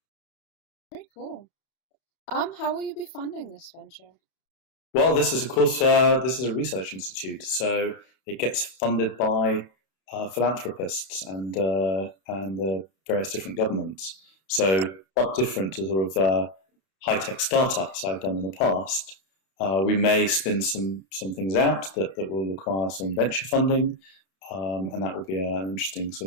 Very cool. How will you be funding this venture? Well, this is, of course, this is a research institute, so it gets funded by philanthropists and various different governments. So quite different to sort of high-tech startups I've done in the past. We may spin some things out that will require some venture funding, and that will be an interesting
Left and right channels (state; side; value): late; right; 31 ms